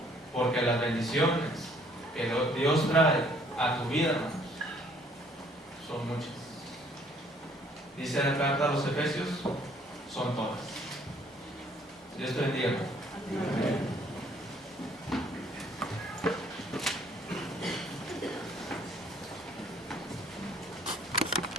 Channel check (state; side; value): normal; both; correlation 0.61